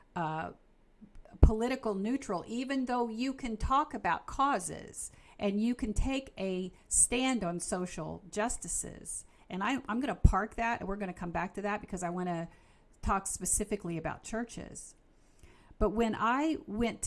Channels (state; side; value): identical; both; correlation 1.00